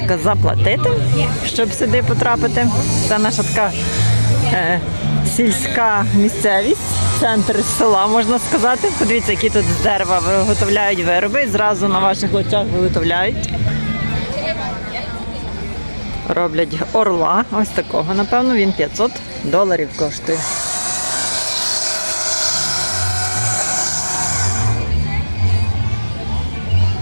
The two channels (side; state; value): both; inverted; correlation -1.00